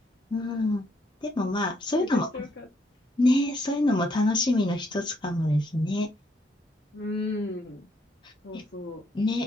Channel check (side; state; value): both; normal; correlation 0.72